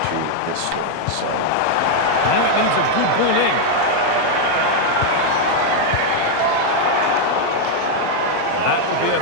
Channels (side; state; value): both; different; correlation 0.00